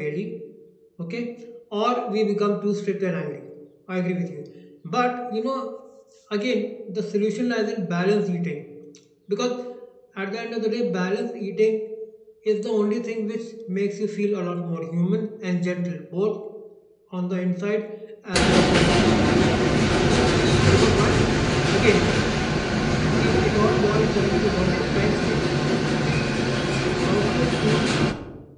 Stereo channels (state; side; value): identical; both; correlation 1.00